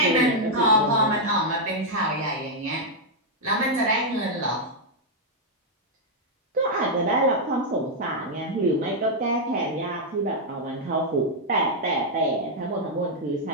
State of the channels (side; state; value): both; normal; correlation -0.02